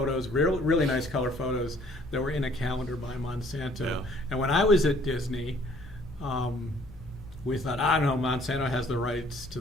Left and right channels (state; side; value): noise; left; hum, 20 dB below the sound